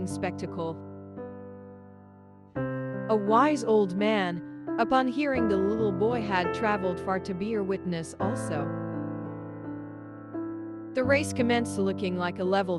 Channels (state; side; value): identical; both; correlation 1.00